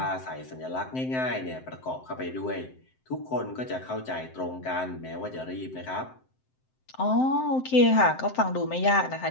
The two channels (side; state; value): right; late; 7.7 ms